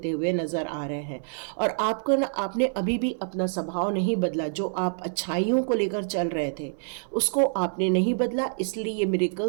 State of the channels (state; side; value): silent; left; 58 dB below the other